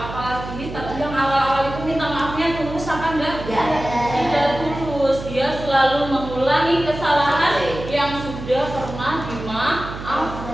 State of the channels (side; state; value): right; noise; hum, 10 dB below the sound